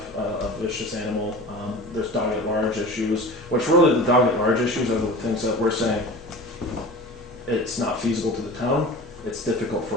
a vicious animal. There's dog at large issues, which really the dog at large issues are the things that we're saying it's not feasible to the town. It's difficult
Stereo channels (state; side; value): normal; both; correlation 0.36